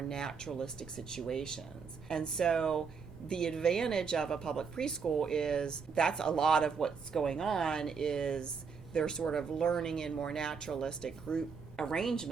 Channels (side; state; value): left; quieter; 5.7 dB